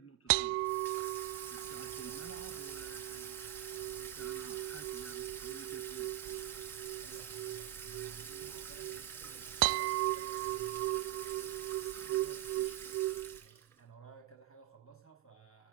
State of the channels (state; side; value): quieter; left; 14.4 dB